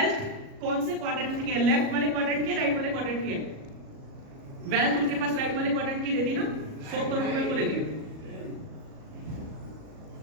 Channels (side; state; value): left; late; 37 ms